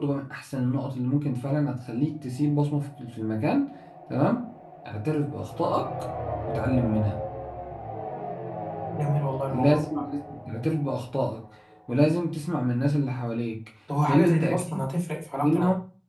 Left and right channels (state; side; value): identical; both; correlation 1.00